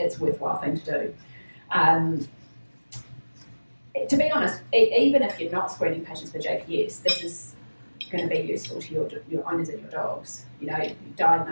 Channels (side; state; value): both; inverted; correlation -1.00